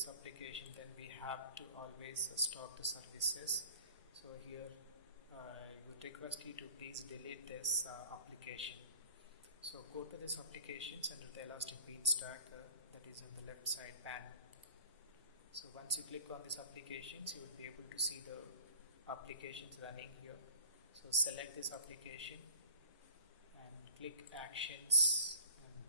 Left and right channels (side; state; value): both; inverted; correlation -0.49